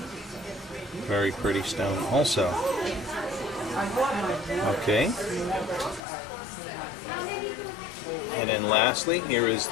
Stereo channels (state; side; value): drops out; right; at 6.0 s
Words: very pretty stone also. Okay. And then lastly, here is